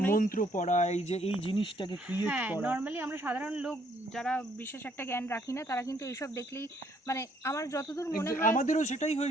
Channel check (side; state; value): both; normal; correlation 0.67